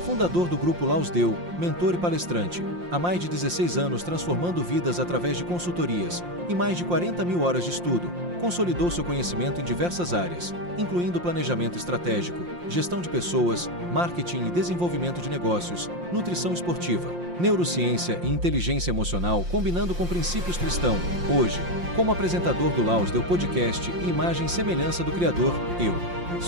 fundador do Grupo Laus Deu, mentor e palestrante, há mais de 16 anos transformando vidas através de consultorias e mais de 40 mil horas de estudo, consolidou seu conhecimento em diversas áreas, incluindo planejamento estratégico, gestão de pessoas, marketing e desenvolvimento de negócios, nutrição esportiva, neurociência e inteligência emocional combinando com princípios cristãos. Hoje, como apresentador do Laus Deu Podcast e imagem e semelhança do Criador, eu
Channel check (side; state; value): left; late; 5.7 ms